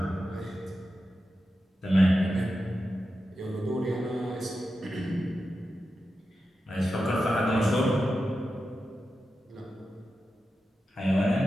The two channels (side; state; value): both; normal; correlation 0.90